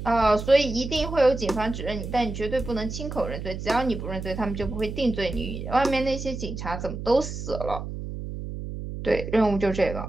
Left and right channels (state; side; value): noise; right; hum, 7 dB below the sound